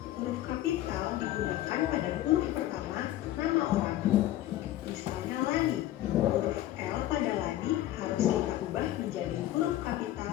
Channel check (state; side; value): quieter; right; 14.0 dB